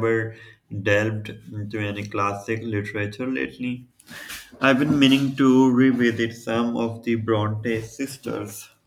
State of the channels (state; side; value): identical; both; correlation 1.00